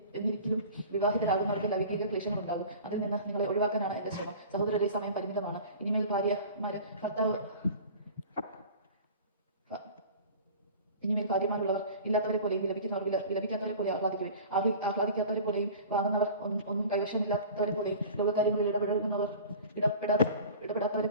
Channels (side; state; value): both; inverted; correlation -0.40